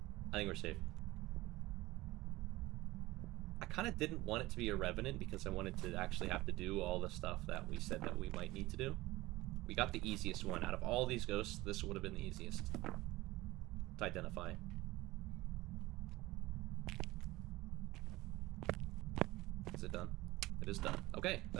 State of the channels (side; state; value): left; quieter; 18.9 dB